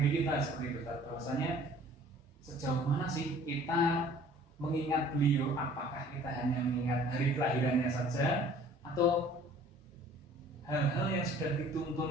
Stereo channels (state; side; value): normal; both; correlation 0.52